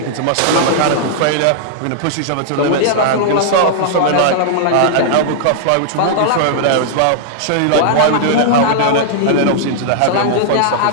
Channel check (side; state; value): both; different; correlation -0.01